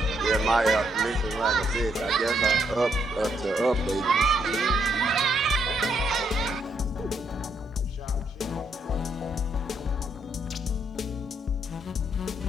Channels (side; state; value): both; normal; correlation 0.74